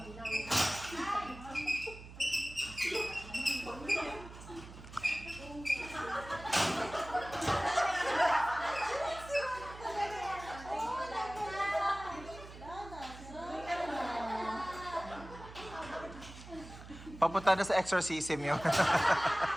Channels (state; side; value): noise; right; hum, 15 dB below the sound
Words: Papunta na sa exorcism yun.